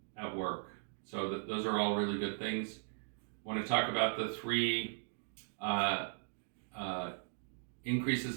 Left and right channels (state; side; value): silent; left; digital silence